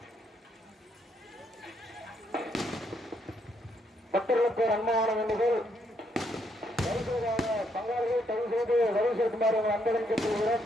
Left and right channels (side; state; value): both; normal; correlation 0.74